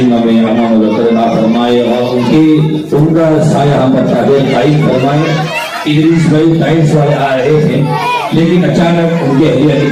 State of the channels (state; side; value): identical; both; correlation 1.00